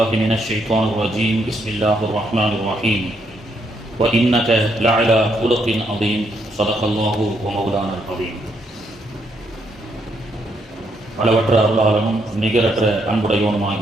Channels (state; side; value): normal; both; correlation 0.75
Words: من الشيطان الرجيم بسم الله الرحمن الرحيم وإنك لعلى خلق عظيم صدق الله ومولانا العظيم. அளவற்ற அருளாளனும் நிகரற்ற